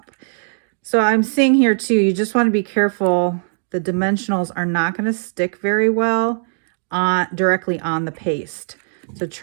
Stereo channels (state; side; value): silent; left; digital silence